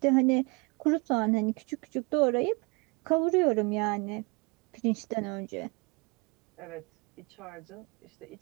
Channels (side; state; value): left; quieter; 29.4 dB